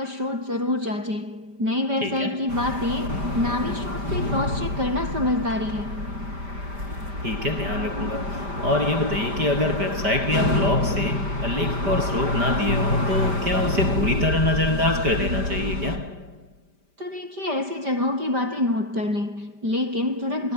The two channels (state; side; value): late; left; 5.1 ms